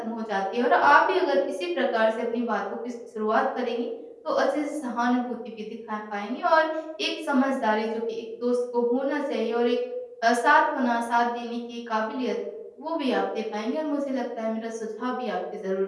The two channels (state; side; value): identical; both; correlation 1.00